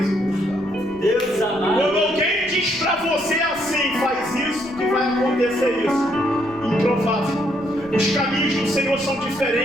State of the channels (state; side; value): noise; left; rumble, 23 dB below the sound